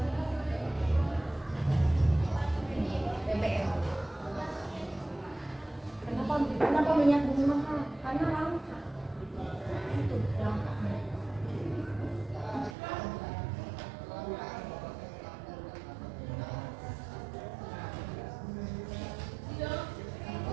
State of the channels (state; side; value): drops out; left; at 12.8 s